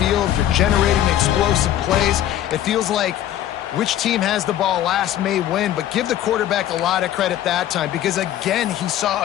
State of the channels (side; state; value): right; quieter; 11.9 dB